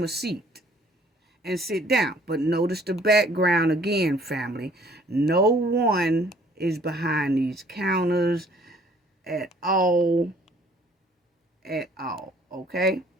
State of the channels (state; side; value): normal; both; correlation 0.58